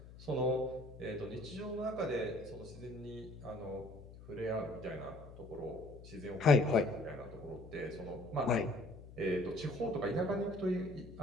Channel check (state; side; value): noise; left; hum, 16 dB below the sound